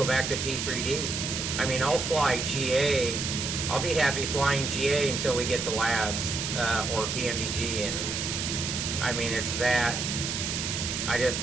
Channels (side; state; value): right; noise; hiss, 2 dB below the sound